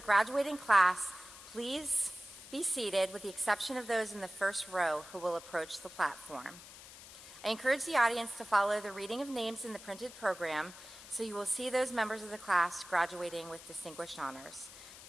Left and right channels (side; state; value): left; noise; hiss, 16 dB below the sound